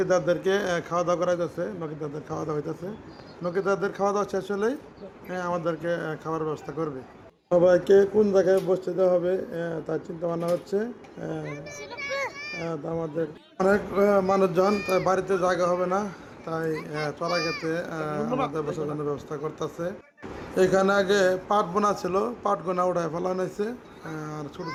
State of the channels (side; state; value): both; identical; correlation 1.00